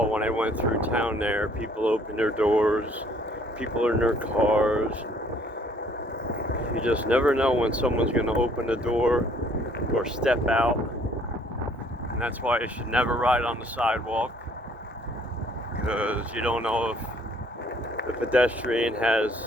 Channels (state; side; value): normal; both; correlation 0.60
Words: when I went through town there, people open their doors, people are in their cars. You just never know when someone's going to open the door or step out. And that's why you should never ride on the sidewalk, because you don't know if the pedestrian